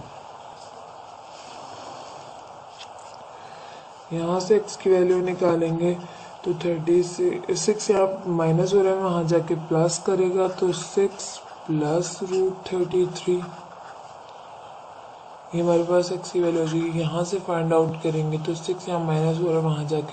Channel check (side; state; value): both; identical; correlation 1.00